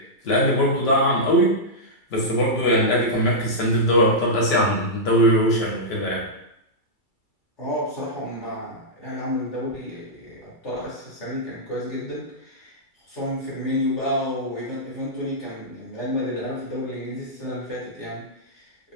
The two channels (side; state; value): right; late; 2.3 ms